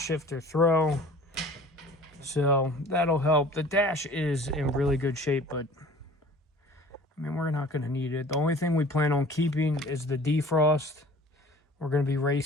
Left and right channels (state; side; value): normal; both; correlation 0.46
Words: throw, so that'll help. The dash is in really good shape, but I mean, we're not going to need it. The only thing we plan on keeping is the defrost. We're going to be